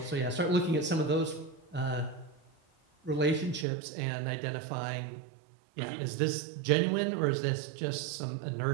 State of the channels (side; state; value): left; drops out; at 3.7 s